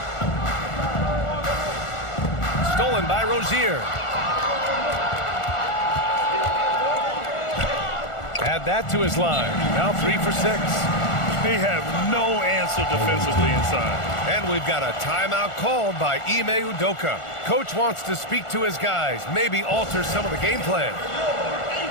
Stolen by Rozier. Add that to his line. Now 3 for 6. They have no answer defensively inside. And we've got a timeout called by Ime Udoka. Coach wants to speak to his guys, maybe alter some of the game plan.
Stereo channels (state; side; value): late; right; 1.4 ms